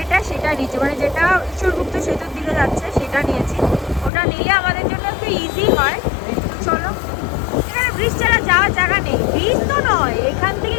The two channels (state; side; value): drops out; right; at 4.1 s